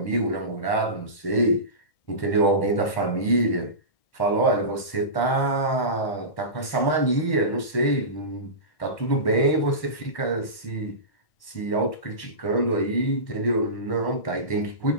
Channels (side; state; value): right; late; 1.1 ms